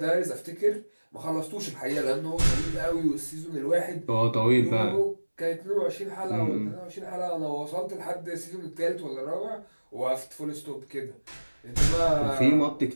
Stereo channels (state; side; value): inverted; both; correlation -1.00